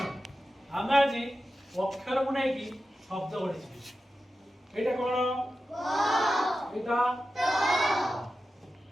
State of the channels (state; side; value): normal; both; correlation 0.92